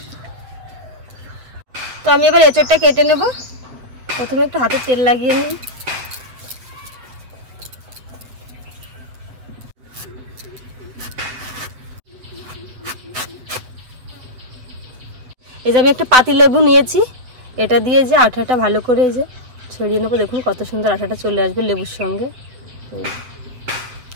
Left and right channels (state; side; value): late; left; 8.2 ms